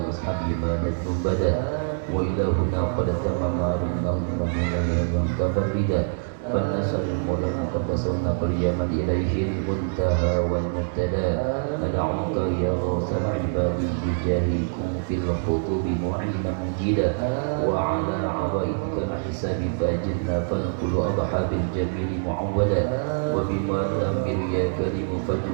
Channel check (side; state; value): left; silent; digital silence